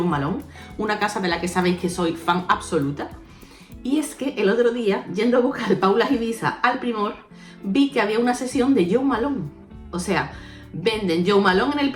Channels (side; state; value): both; identical; correlation 1.00